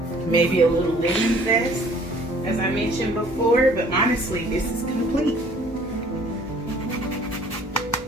Maybe a little lemon zest, as I mentioned before, but honestly, this is complete.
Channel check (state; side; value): normal; both; correlation 0.55